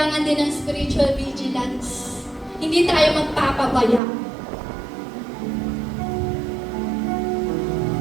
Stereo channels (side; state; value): left; drops out; at 4.0 s